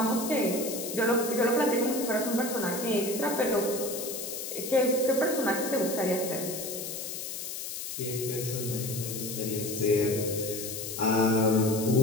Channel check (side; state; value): left; noise; hiss, 6 dB below the sound